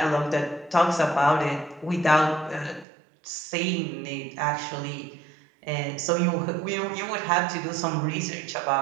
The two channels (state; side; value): drops out; left; at 2.9 s